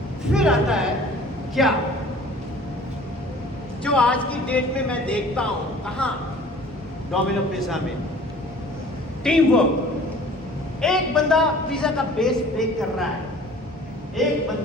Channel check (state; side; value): normal; both; correlation 0.48